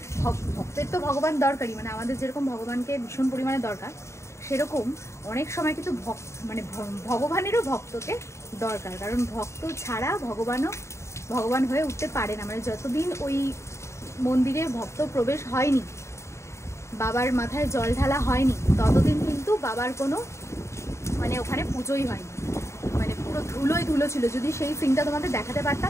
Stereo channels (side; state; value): right; late; 0.14 ms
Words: ভক্তের তো ভগবান দরকারই, মানে আমাদের যেরকম ভগবানকে ভীষণ পরিমাণে দরকার, সেরকম অনেক সময় কিন্তু মানে ভগবানেরও ভক্তকে দরকার। কারণ ভক্ত ছাড়া ভগবান হয়ে উঠতে পারে না। মানে যতদিন ওই মন্দিরে ভক্ত প্রবেশ হয়নি, বাবার মাথায় জল ঢালা হয়নি, ততদিন কিন্তু বাবার কোনো, মানে ওখানে পুজোই হয়নি। মানে পুরো ধুলো ছিল। যদি সেই সিনটা তোমাদের দেখাতে